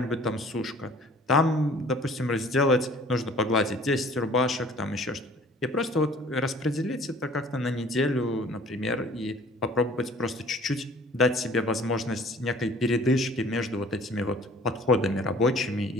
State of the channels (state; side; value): normal; both; correlation 0.51